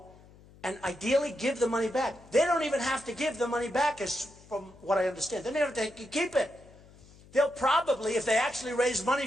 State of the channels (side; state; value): left; noise; hum, 24 dB below the sound